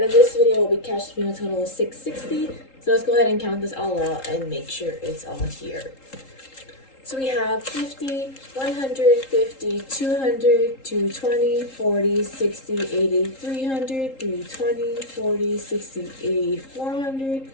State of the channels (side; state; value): right; late; 3.8 ms